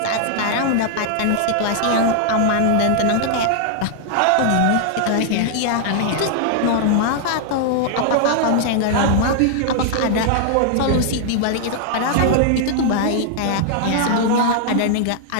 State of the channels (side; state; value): both; different; correlation -0.01